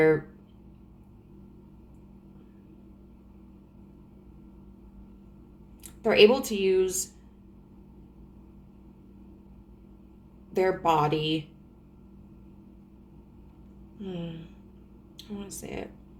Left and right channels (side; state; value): both; identical; correlation 1.00